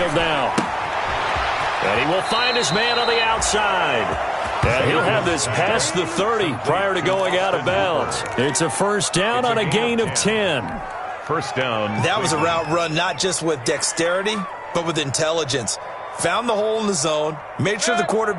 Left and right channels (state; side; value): identical; both; correlation 1.00